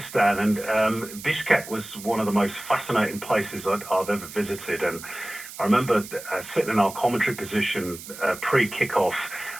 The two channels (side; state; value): right; noise; hiss, 14 dB below the sound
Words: and Bishkek was one of the most fascinating places I've ever visited. And I remember sitting in our commentary position pre-kickoff,